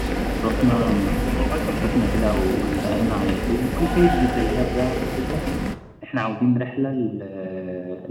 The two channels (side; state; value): both; identical; correlation 1.00